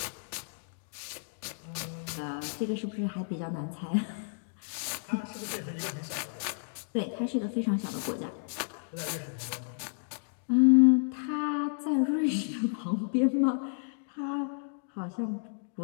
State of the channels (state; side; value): silent; right; digital silence